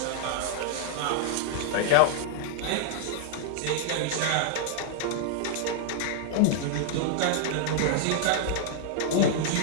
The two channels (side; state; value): both; different; correlation 0.00